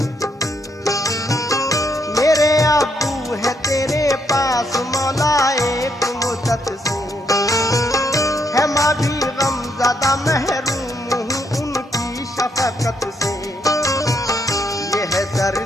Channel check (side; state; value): both; normal; correlation 0.75